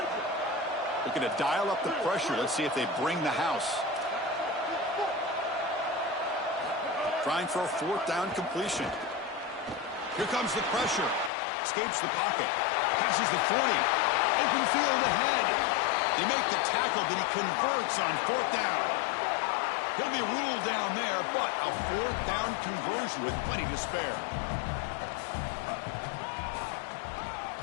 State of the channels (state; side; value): drops out; right; at 11.3 s